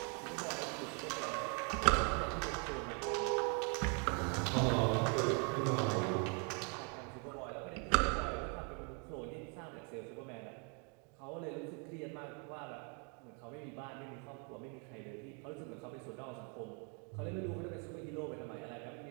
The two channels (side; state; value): left; quieter; 36.8 dB